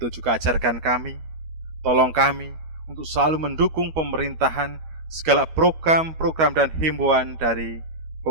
juga ajarkan kami, tolong kami untuk selalu mendukung pemerintahan, segala program-program dan himbauan dari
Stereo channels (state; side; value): late; left; 12 ms